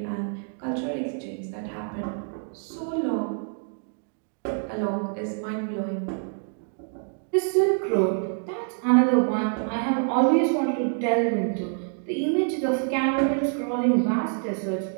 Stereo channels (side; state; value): left; silent; 56 dB below the other